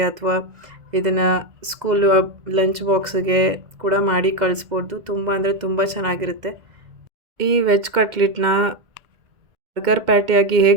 ಅಥವಾ ಇದನ್ನು ಸ್ಕೂಲು ಲಂಚ್ ಬಾಕ್ಸಿಗೆ ಕೂಡ ಮಾಡಿ ಕಳಿಸ್ಬೋದು. ತುಂಬ ಅಂದರೆ ತುಂಬ ಚೆನ್ನಾಗಿರುತ್ತೆ. ಈ ವೆಜ್ ಕಟ್ಲೆಟ್ನ ಬರ್ಗರ್ ಪ್ಯಾಟಿಯಾಗಿ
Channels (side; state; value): left; late; 2.0 ms